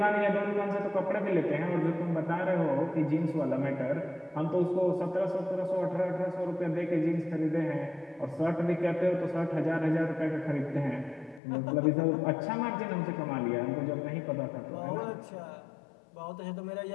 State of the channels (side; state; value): right; drops out; at 11.4 s